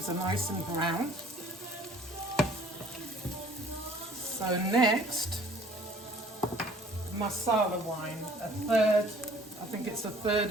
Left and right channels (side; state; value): both; normal; correlation 0.53